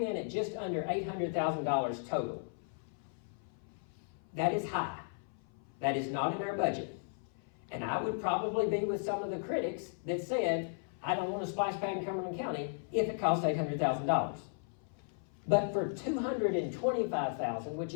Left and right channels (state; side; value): silent; right; 54 dB below the other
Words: in at just under $800,000 total. That is high. That is not in our budget. And I would probably be with some of the critics that said, I don't want a splash pad in Cumberland County if it costs $800,000. But for $225,000, which